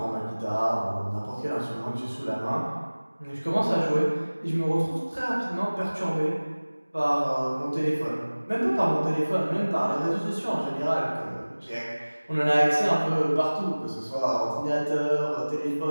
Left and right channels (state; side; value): inverted; both; correlation -1.00